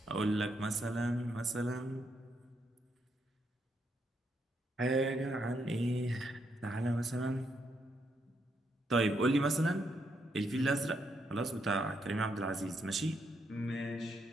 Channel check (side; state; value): both; normal; correlation 0.77